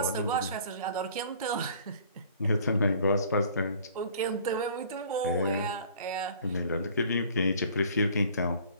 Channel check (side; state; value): both; inverted; correlation -0.52